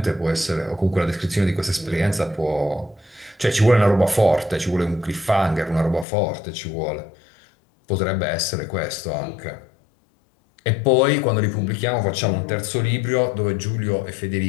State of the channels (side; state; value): right; drops out; at 6.1 s